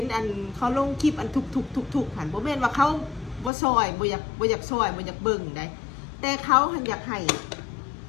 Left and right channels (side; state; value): right; drops out; at 3.5 s